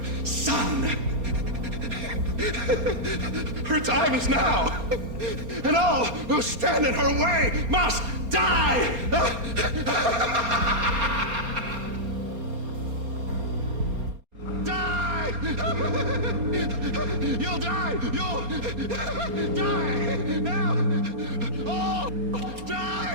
son. Her time is now, and all who stand in her way must die! Die! You'll die! You'll die! Now! Oh!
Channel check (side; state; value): left; late; 4.3 ms